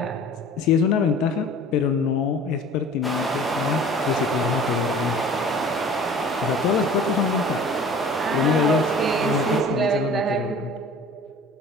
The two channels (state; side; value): normal; both; correlation 0.44